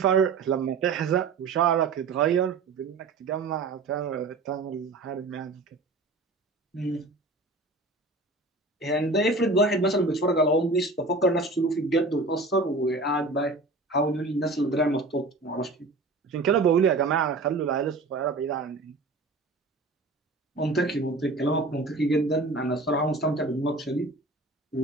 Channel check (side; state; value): left; quieter; 3.3 dB